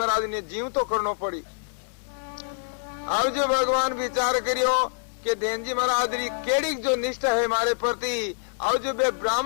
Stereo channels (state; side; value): silent; right; 61 dB below the other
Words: ने जीव तो करना पड़ी। अब जो भगवान विचार करियो कि देन जी महाराज री केड़ी जो निष्ठा है हमारे प्रति। अब जो वे